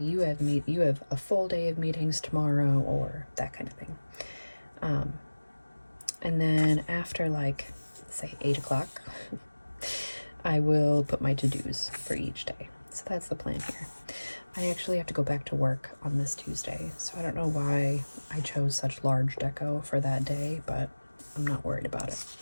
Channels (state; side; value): inverted; both; correlation -1.00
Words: have a full day of meetings tomorrow, or that kind of thing. And then after like say 8 o'clock, I will put my to-dos for each day. So that's the plan here. I actually have to go back to work on this Tuesday, so I don't know why I chose such large deco for that day, but I'm not worried about it.